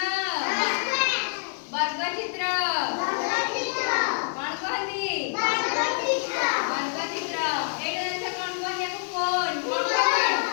वर्ग चित्र कोन कहनी वर्ग चित्र एटा जैसे कोन कहन याको कोन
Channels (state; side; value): silent; right; 61 dB below the other